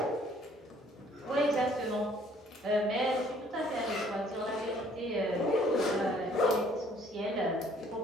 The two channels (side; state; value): both; normal; correlation 0.60